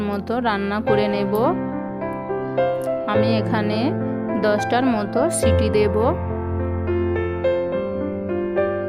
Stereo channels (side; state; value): both; identical; correlation 1.00